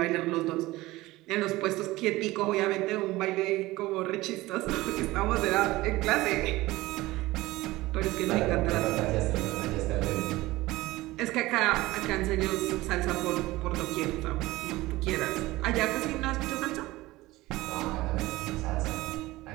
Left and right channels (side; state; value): left; quieter; 18.9 dB